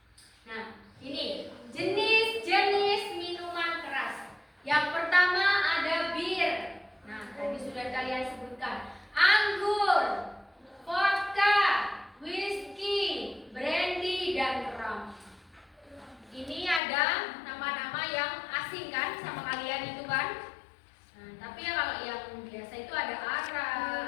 Nah, ini jenis-jenis minuman keras. Yang pertama ada bir. Nah, tadi sudah kalian sebutkan. Anggur, vodka, whisky, brandy, dan rum. Ini ada nama-nama yang asing kan sama kalian itu kan? Nah, tapi ya kalau yang biasa itu ada ara,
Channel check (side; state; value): right; drops out; at 16.8 s